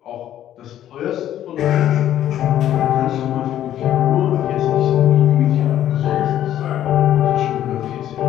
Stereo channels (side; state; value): right; quieter; 11.6 dB